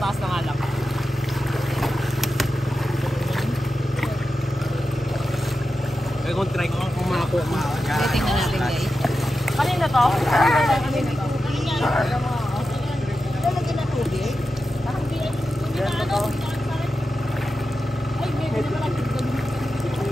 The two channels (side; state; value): both; normal; correlation 0.91